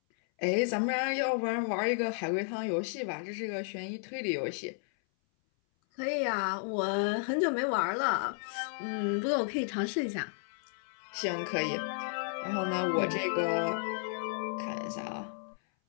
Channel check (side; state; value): right; silent; 56 dB below the other